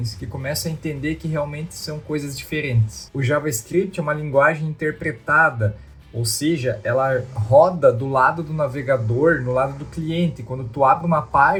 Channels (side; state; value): both; identical; correlation 1.00